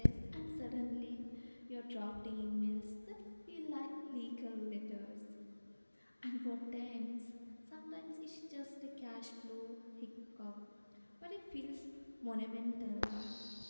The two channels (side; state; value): both; inverted; correlation -1.00